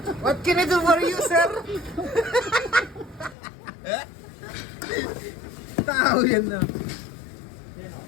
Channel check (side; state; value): right; drops out; at 3.4 s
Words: What can I do for you, sir? Tao yan na.